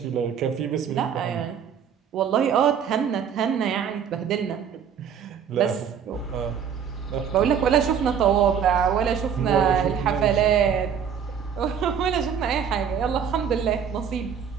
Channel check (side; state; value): left; quieter; 7.7 dB